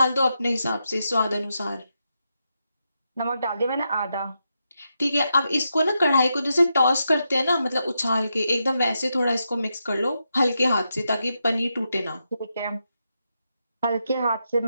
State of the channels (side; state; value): both; inverted; correlation -0.85